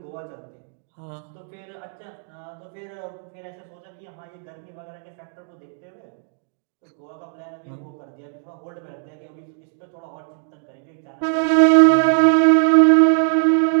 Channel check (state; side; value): silent; left; digital silence